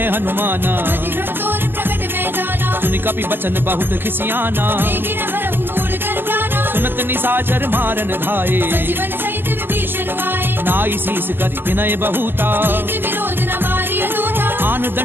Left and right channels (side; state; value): left; late; 0.097 ms